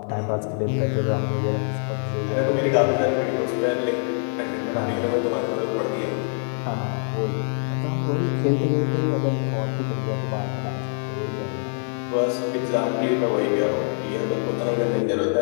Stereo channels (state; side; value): silent; right; 62 dB below the other